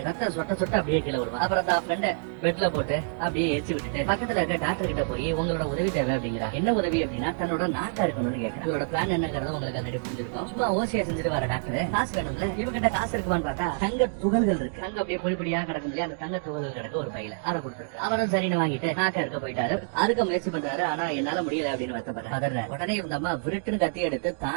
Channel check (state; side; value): silent; left; digital silence